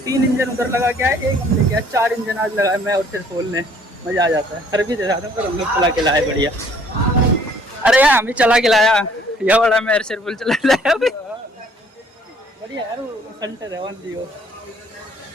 इंजन उधर लगा के आए, एक हम लेके आए, 4 इंजन आज लगाए मैं और फिर खोलने। मजा आ जाता है। सर्विस दे रहा पर हम लोग चला के लाए बढ़िया। अरे यार हम भी चला के लाया, यह बड़ा मैं सिर्फ चला लाया अभी बढ़िया यार। वो सेंटर है 1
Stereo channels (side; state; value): both; normal; correlation 0.60